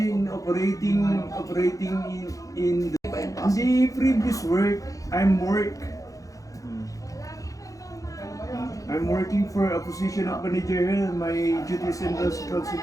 operating in the previous work. I'm working for a position of manager. My duties and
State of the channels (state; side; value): late; right; 0.16 ms